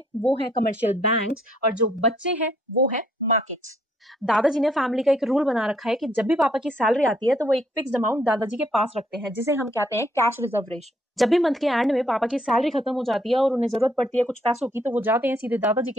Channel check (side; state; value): both; normal; correlation 0.68